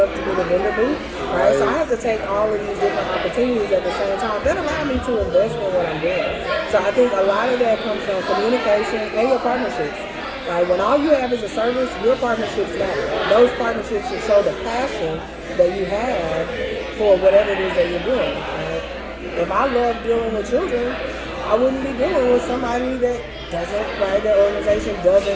with a vendor booth, right? So I have to take all of these different opportunities at the same time that allow me to invest in what I'm doing. So I think a lot of that comes from communication and your partnerships. Right? When all you have is a service, your partnerships matter. Those partnerships should show the passion that you have for whatever it is that you're doing. Right? If I love dealing with children, I wouldn't be dealing with somebody that doesn't, right? Their organization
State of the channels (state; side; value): identical; both; correlation 1.00